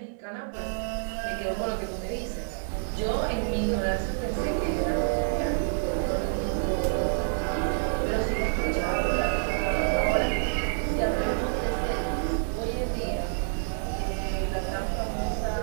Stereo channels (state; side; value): silent; left; digital silence